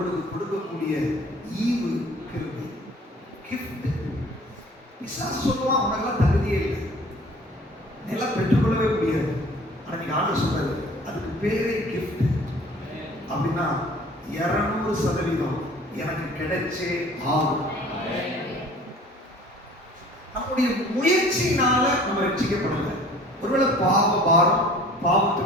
கொடுக்கக்கூடிய ஈவு கிருபை, கிஃப்ட். பிசாசு சொல்லுவான், உனக்கெல்லாம் தகுதியே இல்லை, நிலம் பெற்றுக்கொள்ளவே முடியாது. ஆனா நீங்க ஆண்டு சொல்றது, அதுக்கு பேரே கிஃப்ட். அப்படின்னா 200% எனக்கு கிடைச்சே ஆகும். நம்முடைய முயற்சியினால நம்ம ரட்சிக்கப்படல. ஒருவேளை பாவ பாரம்,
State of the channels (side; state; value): both; normal; correlation 0.49